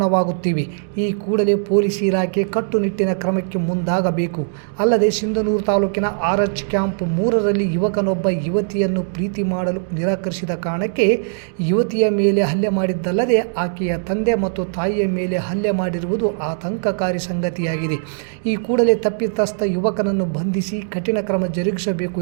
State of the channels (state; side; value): silent; left; digital silence